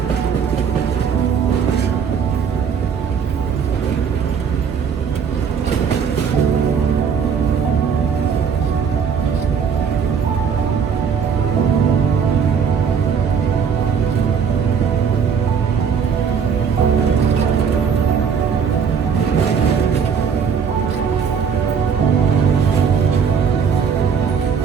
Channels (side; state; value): left; quieter; 6.7 dB